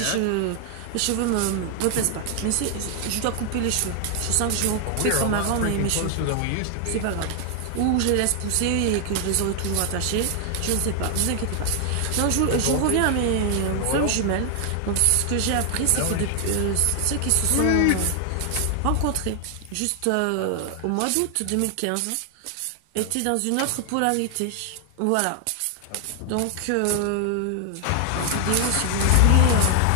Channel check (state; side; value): different; both; correlation 0.00